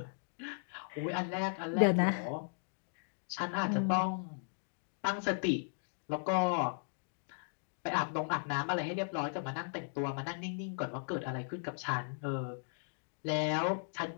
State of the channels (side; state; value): right; silent; digital silence